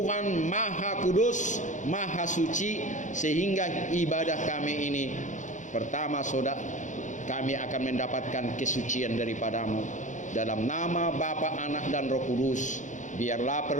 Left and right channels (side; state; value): right; late; 0.36 ms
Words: Maha Kudus, Maha Suci, sehingga ibadah kami ini pertama saudara, kami akan mendapatkan kesucian daripada-Mu. Dalam nama Bapa, Anak, dan Roh Kudus, biarlah